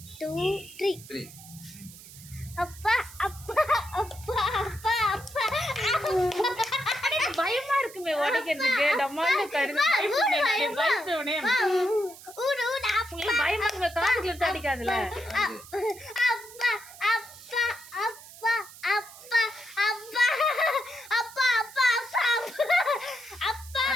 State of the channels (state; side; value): noise; right; hiss, 18 dB below the sound